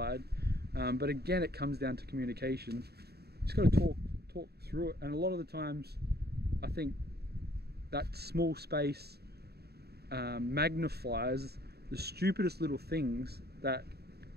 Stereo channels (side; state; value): left; late; 0.47 ms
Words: but again, it comes down to communication. You just got to talk through it, and a lot of the times I think that small space magnifies the stupidest little things that